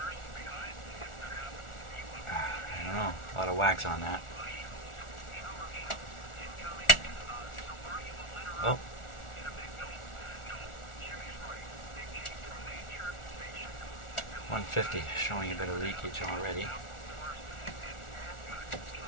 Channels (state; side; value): late; right; 1.4 ms